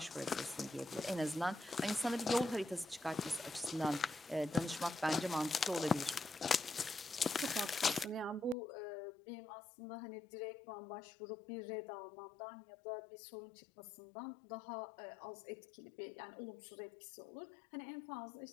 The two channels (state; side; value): drops out; right; at 8.6 s